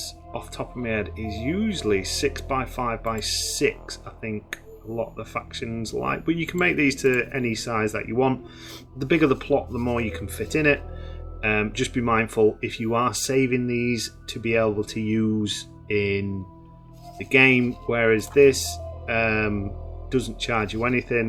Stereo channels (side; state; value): both; identical; correlation 1.00